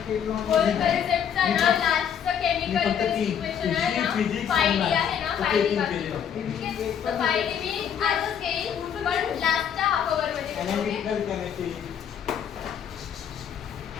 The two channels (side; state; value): right; quieter; 8.4 dB